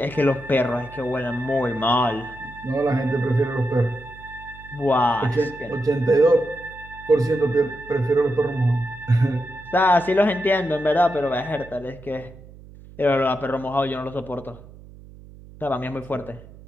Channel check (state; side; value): noise; right; hum, 20 dB below the sound